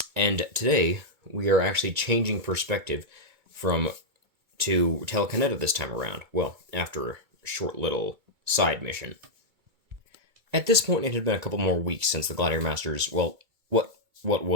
and today we are actually changing perspective from to telekinetic this time around. Well, after a short little side mission. At this point, it had been a couple more weeks since the Gladiator Masters. Well, what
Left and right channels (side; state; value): left; late; 2.2 ms